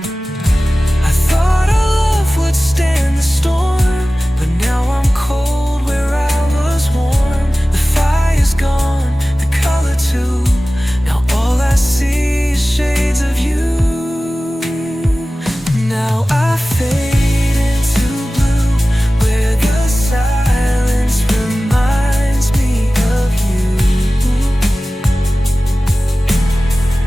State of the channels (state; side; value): normal; both; correlation 0.96